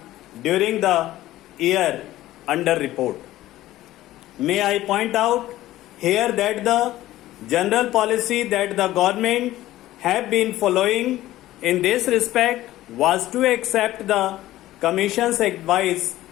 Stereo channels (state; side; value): quieter; right; 15.3 dB